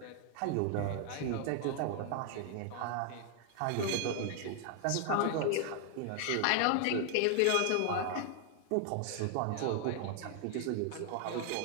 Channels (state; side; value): different; both; correlation 0.00